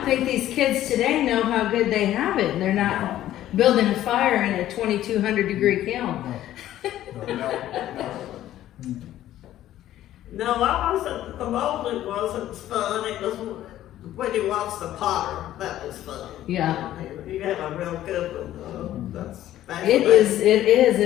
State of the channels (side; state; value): right; quieter; 13.1 dB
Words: think these kids today know how good they have it. They're not building a fire in a 2200 degree kiln. No. No, I wasn't, the molding wasn't fun, it was when you watch the potter, that was fun. Yeah. You have a real good one, that's. It is,